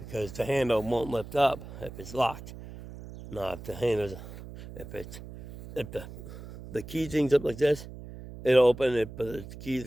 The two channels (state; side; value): noise; right; hum, 13 dB below the sound